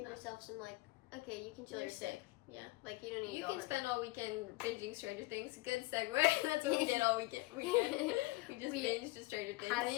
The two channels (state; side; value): quieter; right; 21.2 dB